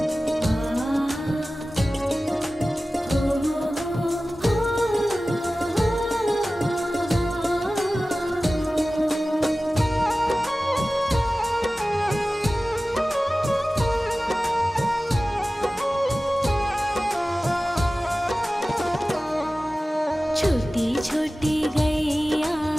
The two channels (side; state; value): both; normal; correlation 0.96